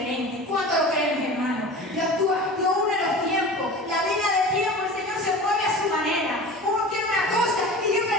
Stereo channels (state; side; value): normal; both; correlation 0.36